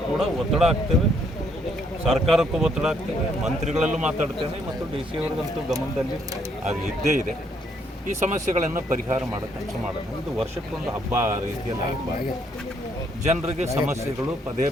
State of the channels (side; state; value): both; normal; correlation 0.70